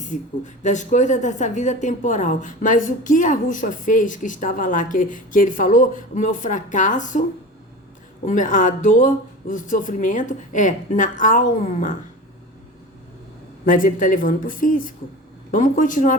das coisas dessa vida temporal. Mas o que Arrucha fez, que estava lá, que ele falou, o meu fracasso, a dor, o sofrimento, é na alma. Mas ele está levando para o físico. Vamos continuar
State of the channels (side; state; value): both; normal; correlation 0.33